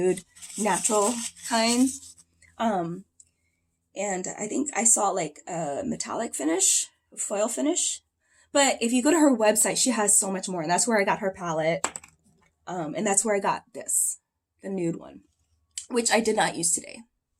natural kind. And I think I saw like a metallic finish, foil finish. But if you go to her website, she has so much more. And that's where I got her palette. And that's where I got this, the nude one, which I did not use today.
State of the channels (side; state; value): both; identical; correlation 1.00